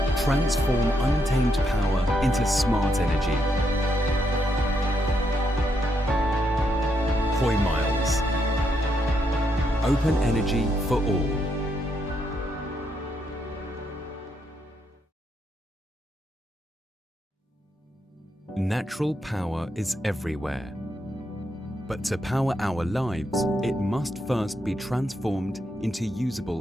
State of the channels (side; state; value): both; normal; correlation 0.78